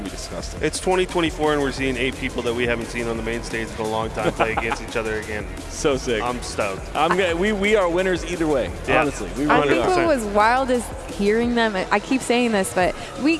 to be disgusting. It's 2024 and we're seeing 8 people that we haven't seen on the main stage in a long time play against each other again. So sick. I'm stoked. We are winners either way, honestly. We I really think are. what was wild is hearing them. I keep saying this, but we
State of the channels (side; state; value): both; identical; correlation 1.00